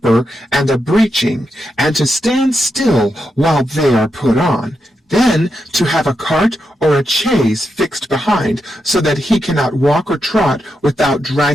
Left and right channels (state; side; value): normal; both; correlation 0.85